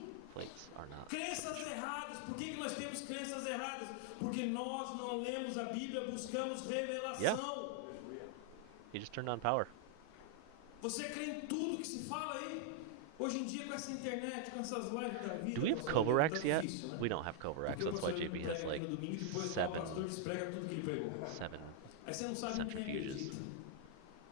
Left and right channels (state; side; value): different; both; correlation 0.00